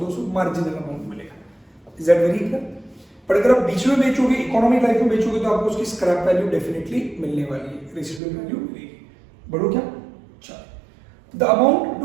मार्जिनल अमाउंट मिलेगा। Is that very clear? पर अगर आप बीच में बेचोगे, इकोनॉमिक लाइफ में बेचोगे, तो आपको उसकी स्क्रैप वैल्यू डेफिनेटली मिलने वाली है, रेसिडुअल वैल्यू मिलेगी। बढ़ो क्या, चलो। The amount to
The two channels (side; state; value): left; drops out; at 8.2 s